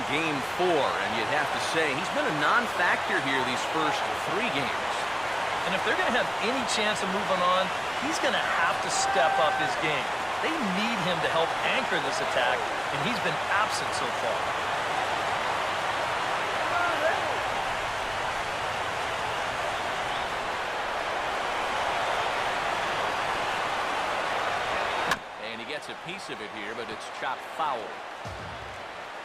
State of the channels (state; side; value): identical; both; correlation 1.00